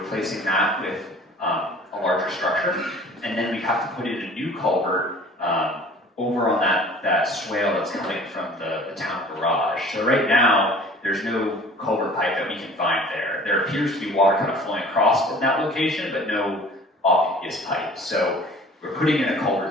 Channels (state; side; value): normal; both; correlation 0.47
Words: that with a larger structure, and then we have to put in a new culvert over on that swale that's coming from the town garage. So right now, there's no culvert pipe that we can find there. There appears to be water kind of flowing across in that location, but no obvious pipe. So we're putting in a